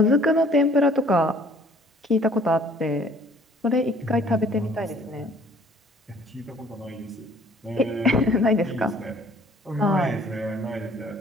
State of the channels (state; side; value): normal; both; correlation 0.56